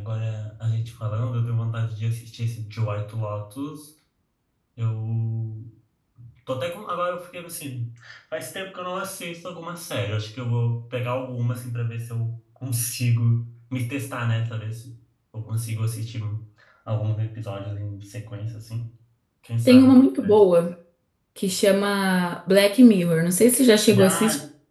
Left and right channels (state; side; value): identical; both; correlation 1.00